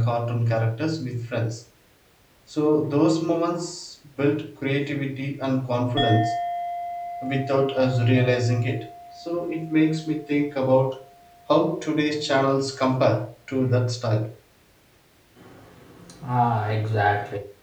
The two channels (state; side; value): identical; both; correlation 1.00